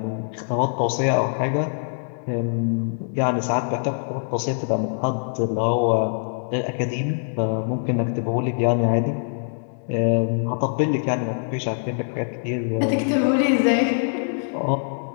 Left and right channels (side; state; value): right; silent; digital silence